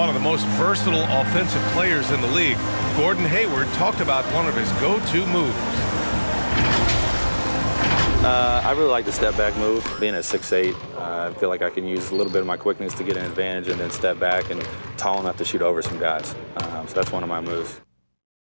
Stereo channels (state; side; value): inverted; both; correlation -1.00